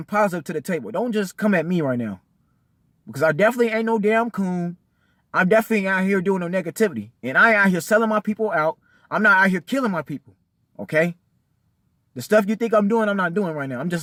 positive to the table. Don't just come at me right now. Because I definitely ain't no damn coon. I'm definitely out here doing no negativity. And I ain't out here selling my people out. I'm not out here killing my people. Okay? The stuff you think I'm doing, I'm not doing right now. I'm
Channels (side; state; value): both; identical; correlation 1.00